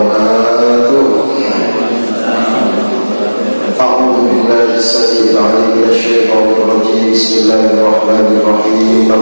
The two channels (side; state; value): both; inverted; correlation -1.00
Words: A'udzu billahi as-sami'il 'alim minasyaitonir rajim. Bismillahirrahmanirrahim. Wa